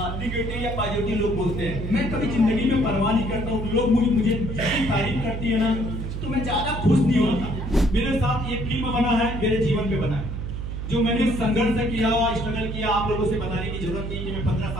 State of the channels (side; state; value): right; noise; hum, 5 dB below the sound